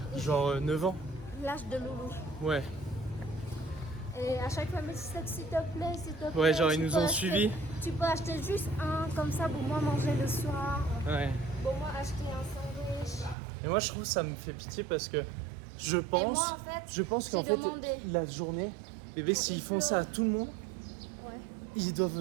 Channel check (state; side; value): drops out; left; at 13.4 s